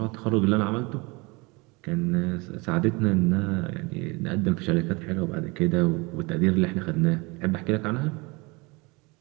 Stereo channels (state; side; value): quieter; left; 26.3 dB